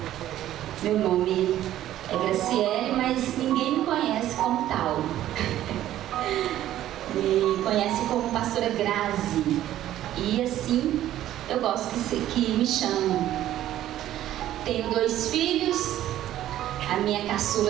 meu nome é Graciele, mas ninguém me conhece como tal. Me conhece como pastora Grazi. E assim eu gosto que me chamam. Tenho 2 filhos. A minha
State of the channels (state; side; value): quieter; left; 12.9 dB